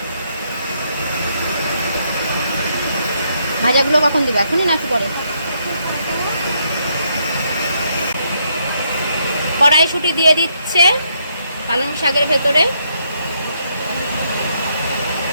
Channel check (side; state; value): both; inverted; correlation -0.74